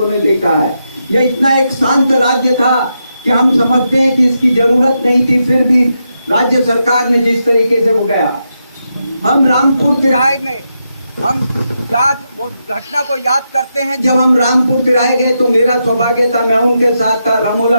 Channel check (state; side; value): inverted; both; correlation -0.84